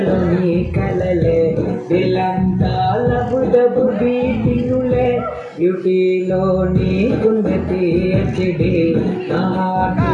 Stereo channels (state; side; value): identical; both; correlation 1.00